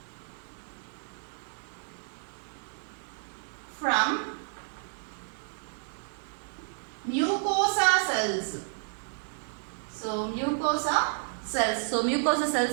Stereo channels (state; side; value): silent; left; 57 dB below the other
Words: from mucosa cells. So mucosa cells. So mucosal